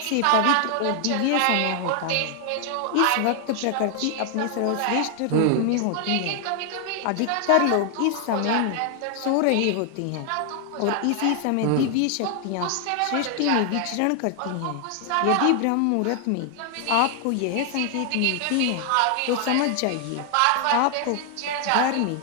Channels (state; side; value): different; both; correlation 0.00